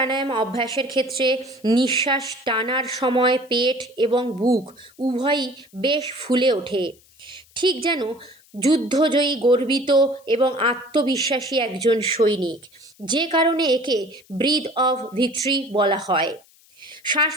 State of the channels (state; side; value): noise; left; hiss, 29 dB below the sound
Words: অভ্যাসের ক্ষেত্রে নিঃশ্বাস টানার সময় পেট এবং বুক উভয়ই বেশ ফুলে ওঠে, ঠিক যেন যুদ্ধজয়ী, গর্বিত এবং আত্মবিশ্বাসী একজন সৈনিক, যে কারণে একে ব্রিথ অফ ভিক্টরি বলা হয়। শ্বাস